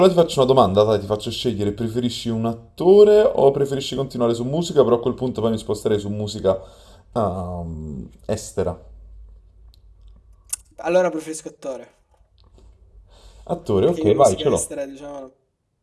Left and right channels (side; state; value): both; identical; correlation 1.00